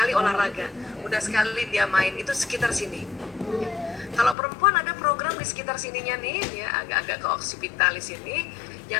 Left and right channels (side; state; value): right; drops out; at 4.4 s